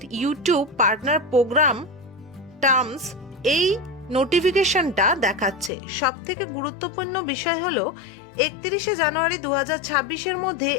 YouTube partner program terms, এই নোটিফিকেশনটা দেখাচ্ছে। সব থেকে গুরুত্বপূর্ণ বিষয় হলো 31শে জানুয়ারি 2026-এর মধ্যে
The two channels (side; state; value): right; drops out; at 5.7 s